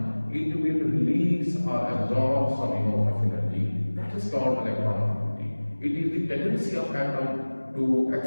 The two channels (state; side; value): inverted; both; correlation -1.00